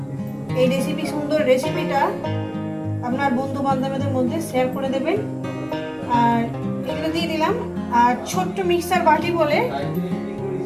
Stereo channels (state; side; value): identical; both; correlation 1.00